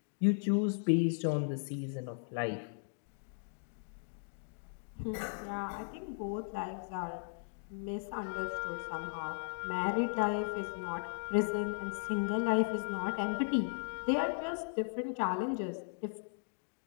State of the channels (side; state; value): right; silent; digital silence